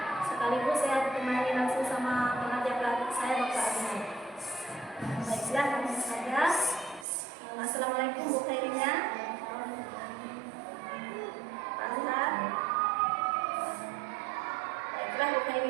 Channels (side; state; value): left; drops out; at 7.1 s